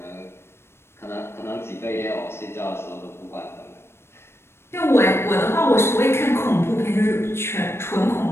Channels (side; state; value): right; late; 0.12 ms